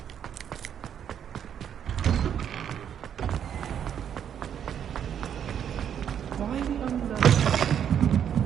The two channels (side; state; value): left; quieter; 8.9 dB